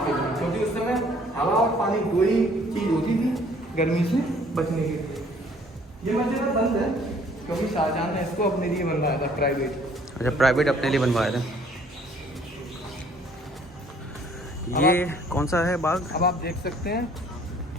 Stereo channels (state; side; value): normal; both; correlation 0.58